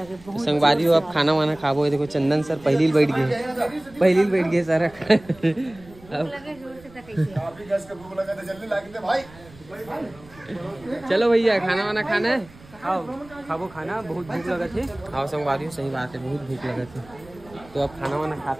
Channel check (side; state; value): right; noise; rumble, 23 dB below the sound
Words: बहुत संगवारी हो अब खाना वाना खाबो। देखो चंदन सर पहली बैठ गए सर लगे जोर से तक कैसे भूख लगा तो जल्दी ला के भाई। चलो भैया खाना वाना खाना है आओ खाबो खाना बहुत भूख लगा थे। आओ संगवारी हो सही बात है बहुत भूख लगा थे तो अब खाना वाना